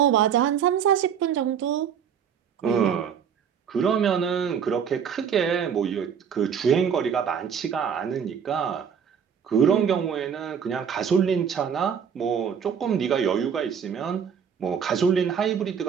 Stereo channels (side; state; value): left; quieter; 7.6 dB